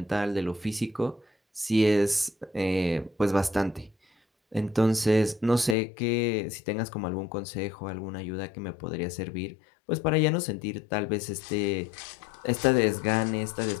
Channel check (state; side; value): drops out; right; at 5.8 s